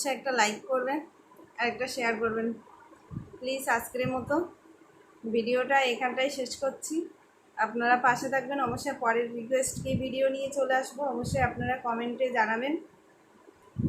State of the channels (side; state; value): both; identical; correlation 1.00